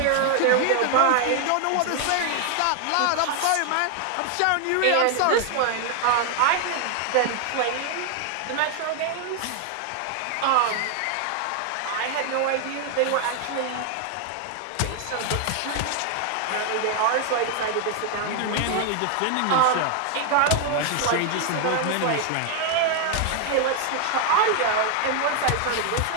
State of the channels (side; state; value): both; different; correlation 0.00